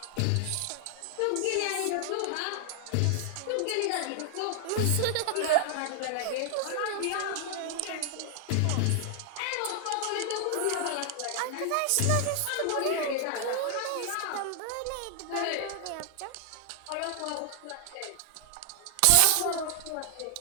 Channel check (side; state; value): both; different; correlation 0.00